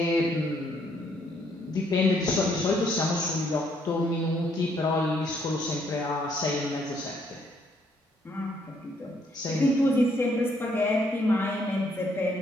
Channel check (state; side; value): normal; both; correlation 0.70